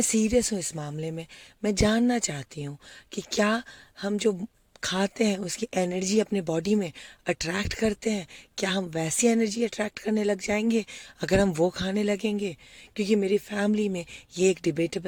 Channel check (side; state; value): both; identical; correlation 1.00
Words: सीरियस हूँ इस मामले में। मैं जानना चाहती हूँ कि क्या हम जो खाते हैं उसकी एनर्जी अपने बॉडी में अट्रैक्ट करते हैं? क्या हम वैसी एनर्जी अट्रैक्ट करने लग जाएंगे अगर हम वो खाने लगेंगे? क्योंकि मेरी फैमिली में ये एक